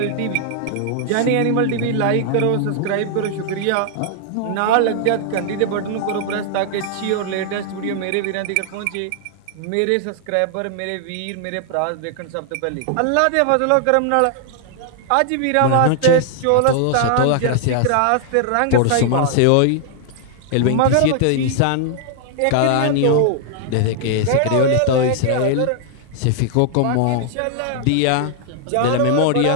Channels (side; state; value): both; different; correlation -0.01